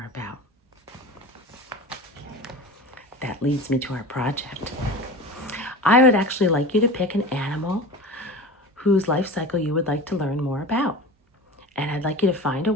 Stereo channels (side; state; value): both; normal; correlation 0.33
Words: about? That leads me to our project. I would actually like you to pick an animal whose life cycle you would like to learn more about. And I'd like you to find a